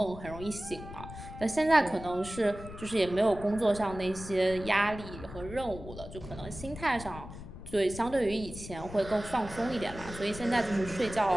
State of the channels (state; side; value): noise; left; rumble, 12 dB below the sound